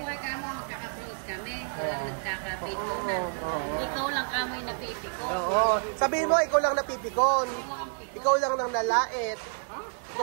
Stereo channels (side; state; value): left; silent; digital silence